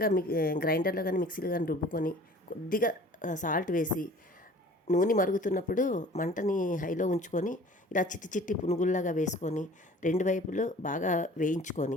గ్రైండర్లో కానీ మిక్సీలో కానీ రుబ్బుకొని కొద్దిగా సాల్ట్ వేసి నూనె మరుగుతున్నప్పుడు మంటని హైలో ఉంచుకొని ఇలా చిట్టి చిట్టి పునుగుల్లాగా వేసుకొని 2 వైపులు బాగా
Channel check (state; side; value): normal; both; correlation 0.47